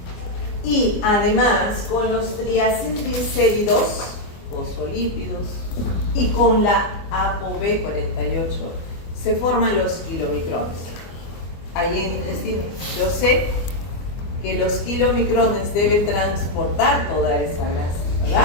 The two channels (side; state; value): right; late; 24 ms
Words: y además con los triacilglicéridos, fosfolípidos, y con la ApoB48 se forman los kilomicrones. Ahí en el intestino yo sé que los kilomicrones deben transportar toda esa grasa, ¿verdad?